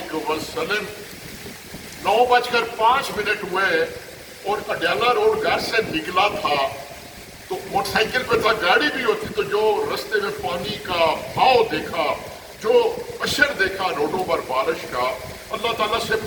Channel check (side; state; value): both; identical; correlation 1.00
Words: وسلم۔ 9:05 ہوئے اور اڈیالہ روڈ گھر سے نکلا تھا تو موٹر سائیکل پہ تھا، گاڑی بھی ہوتی تو جو رستے میں پانی کا بہاؤ دیکھا، جو اشر دیکھا روڈوں پر بارش کا، اللہ تعالیٰ سے